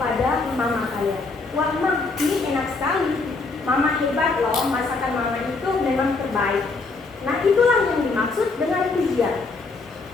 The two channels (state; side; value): quieter; right; 3.9 dB